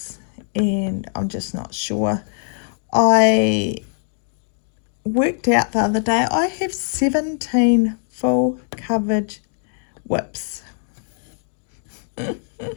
and I'm just not sure. I worked out the other day, I have 17 full coverage whips.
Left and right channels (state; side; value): silent; right; 57 dB below the other